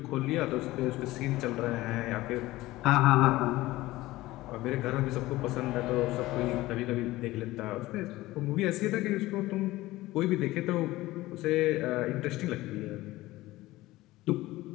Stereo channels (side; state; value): right; quieter; 18.0 dB